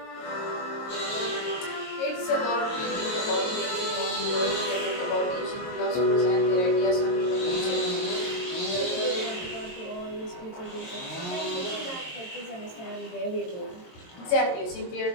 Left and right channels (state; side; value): late; right; 22 ms